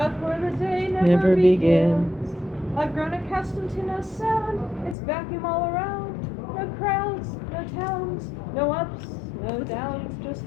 where the day never begins. I've grown accustomed to no sound, it's vacuum all around. No crowds, no towns, no ups, no downs, just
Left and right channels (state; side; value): drops out; right; at 5.0 s